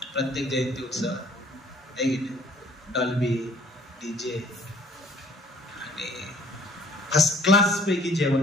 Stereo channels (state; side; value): normal; both; correlation 0.58